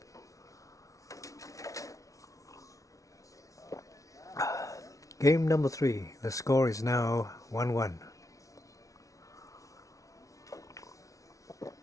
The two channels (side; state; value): right; late; 0.16 ms